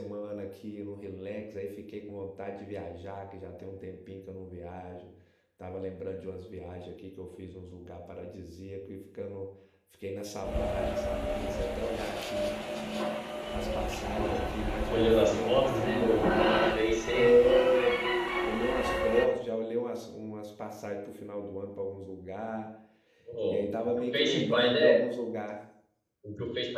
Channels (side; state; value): both; identical; correlation 1.00